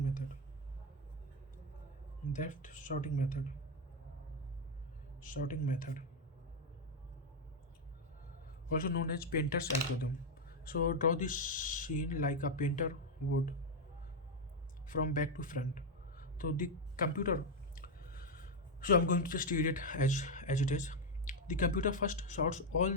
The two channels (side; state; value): both; normal; correlation 0.04